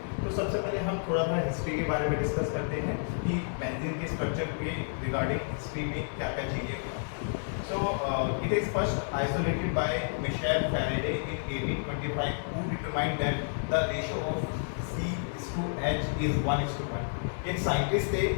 तो सबसे पहले हम थोड़ा सा हिस्ट्री के बारे में डिस्कस करते हैं कि बेंजीन के स्ट्रक्चर के रिगार्डिंग हिस्ट्री में क्या क्या चीज़ें हुआ। So it is first isolated by Michel Faraday in 1825, who determined that the ratio of C/H is 1:1। एक साइंटिस्ट थे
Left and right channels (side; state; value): right; silent; 58 dB below the other